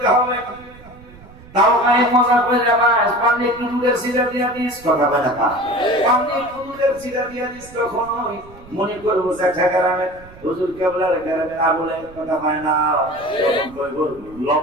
হবে তাও গায়ে মজা করে যাবাস পানি একটু দুধের সিরা দিয়া দিস কথা বলে না পানি একটু দুধের সিরা দিয়া দিস তখন মনে করবো জ্যাঠা গ্রামে হুজুর কেবলার গ্রামে আবুলে কথা পায় না,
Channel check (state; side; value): noise; right; rumble, 21 dB below the sound